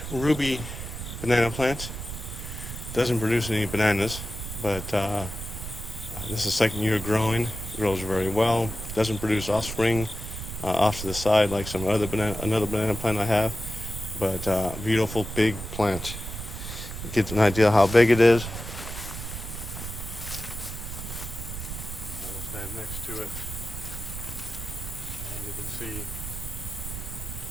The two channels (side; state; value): right; noise; rumble, 8 dB below the sound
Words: ruby banana plant. Doesn't produce any bananas, but this is the second year growing. Grows very well. Doesn't produce offspring off to the side like some another banana plant I have, but beautiful big plant. Get an idea how big it is. I will stand next to it, and you can see